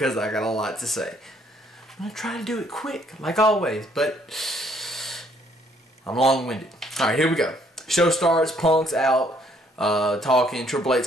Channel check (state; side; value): normal; both; correlation 0.66